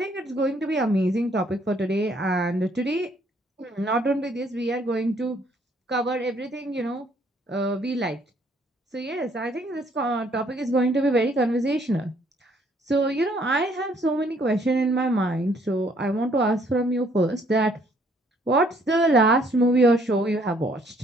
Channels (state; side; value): normal; both; correlation 0.65